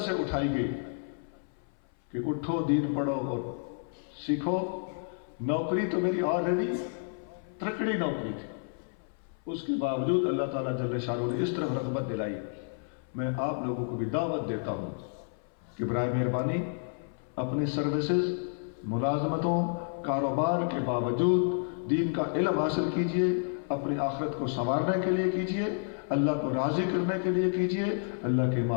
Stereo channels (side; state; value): right; silent; 58 dB below the other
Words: اٹھائی گئی کہ اٹھو دین پڑھو اور سیکھو۔ نوکری تو میری آلریڈی ترکڑی نوکری تھی، اس کے باوجود اللہ تعالیٰ جل شانہ نے اس طرح رغبت دلائی۔ میں آپ لوگوں کو بھی دعوت دیتا ہوں کہ برائے مہربانی اپنی سروسز، ملازمتوں، کاروبار کے باوجود دین کا علم حاصل کیجئے، اپنی آخرت کو سنوارنے کے لیے کیجئے، اللہ کو راضی کرنے کے لیے کیجئے۔ اللہ کے